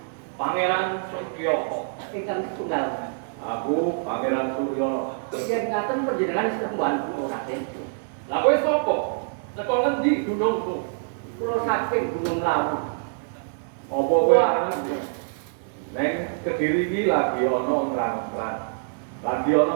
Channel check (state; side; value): silent; left; digital silence